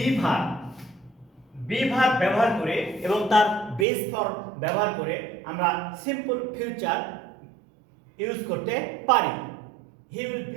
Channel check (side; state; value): left; drops out; at 3.9 s